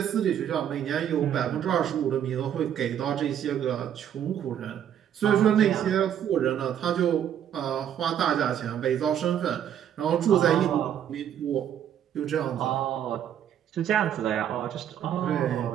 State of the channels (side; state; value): left; quieter; 9.7 dB